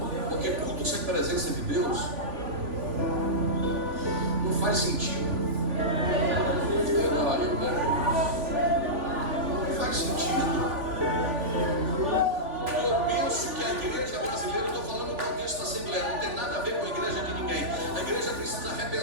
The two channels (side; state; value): left; late; 3.5 ms